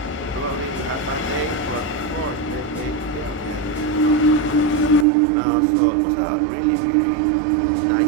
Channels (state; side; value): drops out; left; at 5.1 s